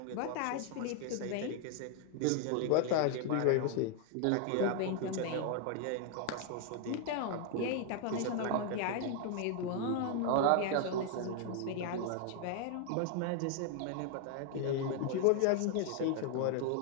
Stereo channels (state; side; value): different; both; correlation 0.00